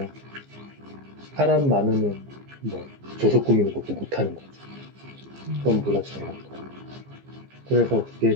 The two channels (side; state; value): left; late; 15 ms